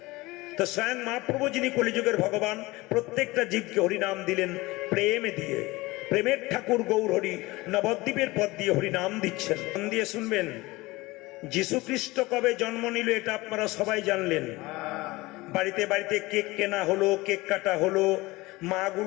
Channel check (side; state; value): right; quieter; 21.0 dB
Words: তো স্বয়ং মহাপ্রভু যিনি কলিযুগের ভগবান, প্রত্যেকটা জীবকে হরিনাম দিলেন প্রেমে দিয়ে। প্রেমের ঠাকুর গৌর হরি নবদ্বীপের পথ দিয়ে হরিনাম দিচ্ছেন। মন দিয়ে শুনবেন। যীশু খ্রিস্ট কবে জন্ম নিল এটা আপনারা সবাই জানলেন। বাড়িতে বাড়িতে কেক কেনা হলো, কেক কাটা হলো,